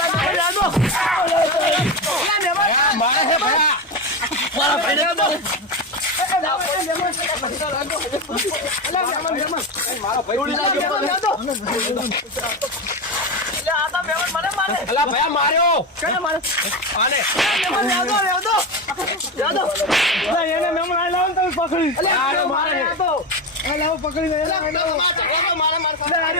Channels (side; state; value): both; normal; correlation 0.17